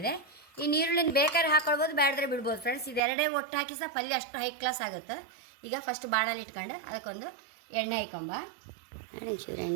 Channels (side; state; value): left; drops out; at 3.0 s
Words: ಈ ನೀರುಳ್ಳಿನ ಬೇಕಾದ್ರೆ ಹಾಕೊಳ್ಬೋದು, ಬೇಡದ್ರೆ ಬಿಡ್ಬೋದು ಫ್ರೆಂಡ್ಸ್. ಇದೆರಡೇ ಒಟ್ಟು ಹಾಕಿ ಸಹ ಪಲ್ಯ ಅಷ್ಟು ಹೈ ಕ್ಲಾಸ್ ಆಗುತ್ತೆ. ಈಗ ಫಸ್ಟ್ ಬಾಣಲ್ಲಿ ಇಟ್ಕೊಂಡು ಅದಕ್ಕೊಂದು ಎಣ್ಣೆ ಹಾಕೊಂಬ. ನೋಡಿ, ಒಂಚೂರು